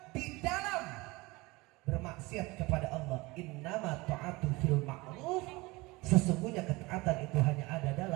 di dalam bermaksiat kepada Allah. Innama ta'atu fil ma'ruf. Sesungguhnya ketaatan itu hanya ada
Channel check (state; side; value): quieter; left; 22.8 dB